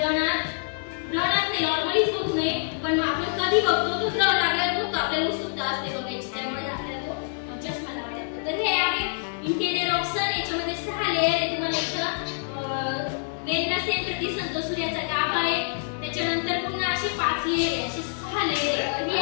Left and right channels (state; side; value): silent; right; 61 dB below the other